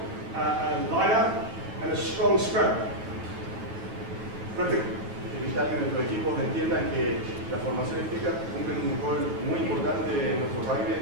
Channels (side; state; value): left; late; 8.8 ms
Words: line-up and a strong scrum. But evitar que nuestros equipos entiendan que las formaciones fijas cumplen un rol muy importante en nuestro rugby